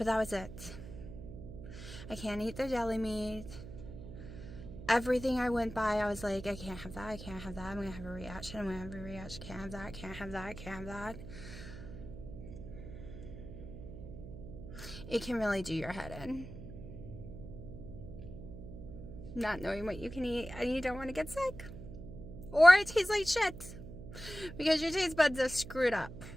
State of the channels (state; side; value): noise; right; hum, 12 dB below the sound